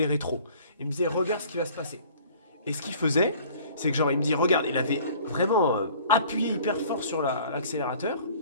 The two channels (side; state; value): both; inverted; correlation -0.51